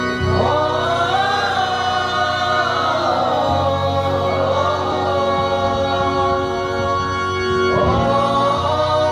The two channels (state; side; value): identical; both; correlation 1.00